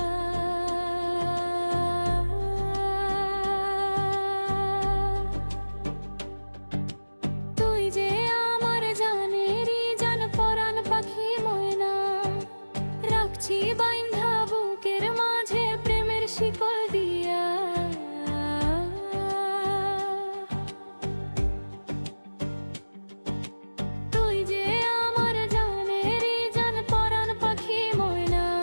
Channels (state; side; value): inverted; both; correlation -1.00